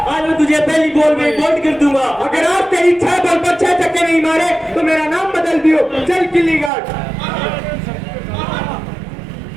आज मैं तुझे पहली बॉल में आउट कर दूंगा। अगर आप तेरी 6 बॉल पर 6 छक्के नहीं मारे तो मेरा नाम बदल दियो। चल गिल्ली गार्ड।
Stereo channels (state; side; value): drops out; left; at 6.7 s